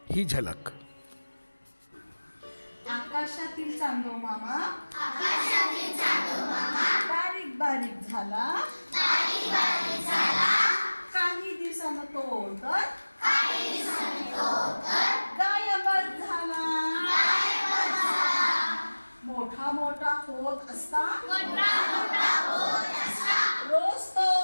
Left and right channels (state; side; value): inverted; both; correlation -1.00